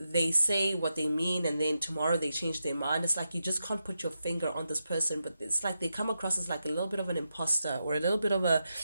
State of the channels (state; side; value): inverted; both; correlation -0.87